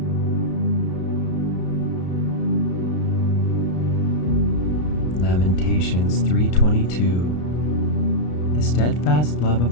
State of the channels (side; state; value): right; late; 33 ms